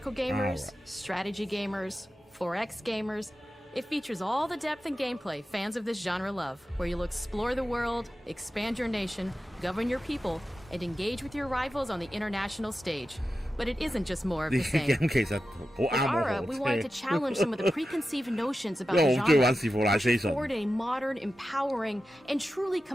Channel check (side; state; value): both; normal; correlation 0.92